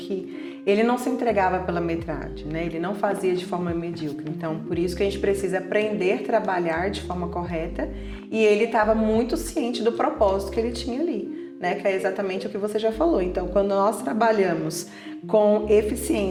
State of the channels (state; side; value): identical; both; correlation 1.00